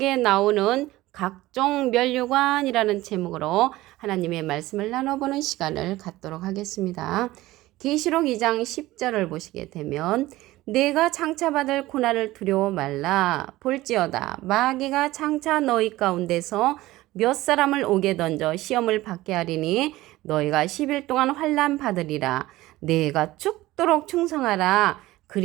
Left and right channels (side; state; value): left; quieter; 17.5 dB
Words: 나오는 각종 면류관이라는 제목으로 하나님의 말씀을 나눠보는 시간을 갖도록 하겠습니다. 계시록 2장 10절을 보시게 되면 내가 장차받을 고난을 두려워 말라. 볼지어다 마귀가 장차 너희 가운데서 몇 사람을 옥에 던져 시험을 받게 하리니 너희가 10일 동안 환난 받으리라. 내가 죽도록 충성하라.